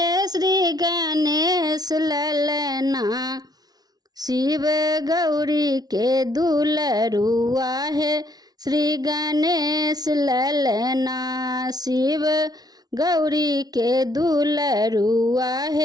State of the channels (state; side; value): late; left; 0.19 ms